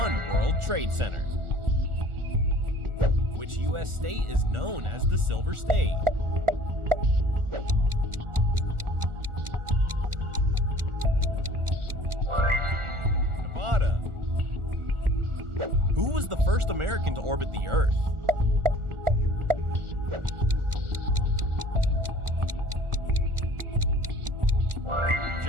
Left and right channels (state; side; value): late; left; 1.4 ms